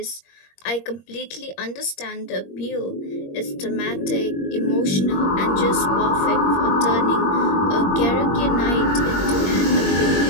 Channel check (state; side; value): late; right; 21 ms